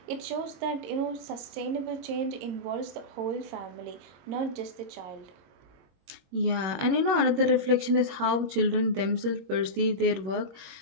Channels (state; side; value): late; left; 21 ms